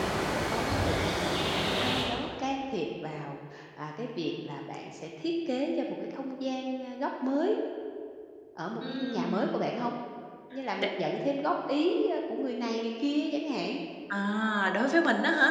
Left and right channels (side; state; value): both; identical; correlation 1.00